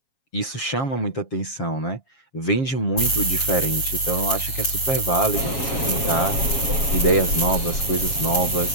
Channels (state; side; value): late; right; 7.4 ms